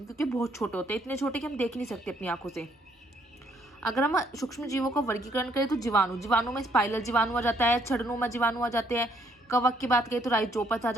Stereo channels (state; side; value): normal; both; correlation 0.68